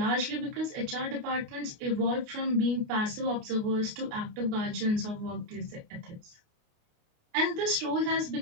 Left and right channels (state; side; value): late; left; 29 ms